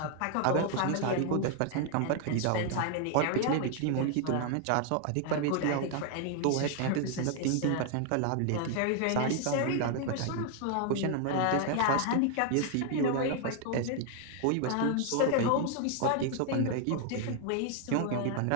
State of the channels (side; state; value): both; different; correlation 0.00